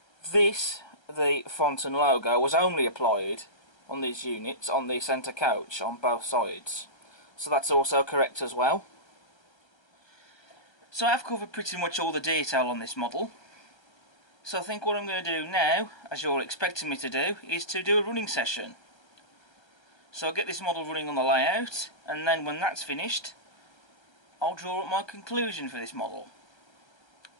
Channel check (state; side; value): late; right; 1.3 ms